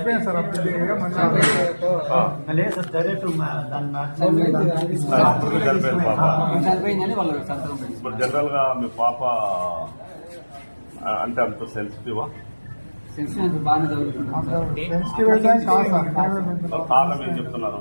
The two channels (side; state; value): both; inverted; correlation -1.00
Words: సార్. ఇప్పుడు జనరల్ గా మీ పాప అంటే అంత సెన్సిటివా? కారణం ఏం చెప్తున్నారు?